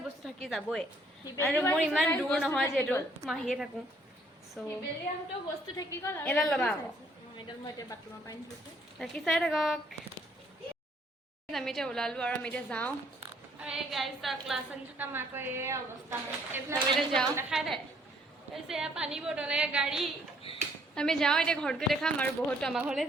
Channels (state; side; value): normal; both; correlation 0.65